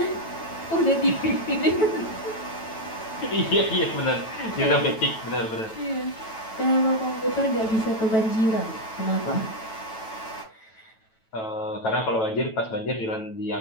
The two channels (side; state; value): right; late; 9.1 ms